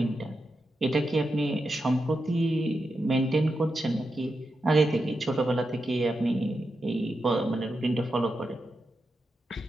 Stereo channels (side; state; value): both; normal; correlation 0.88